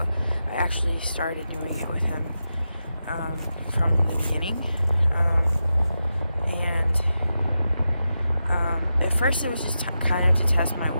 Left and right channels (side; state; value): both; inverted; correlation -0.90